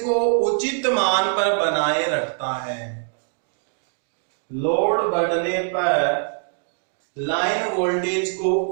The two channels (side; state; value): left; silent; digital silence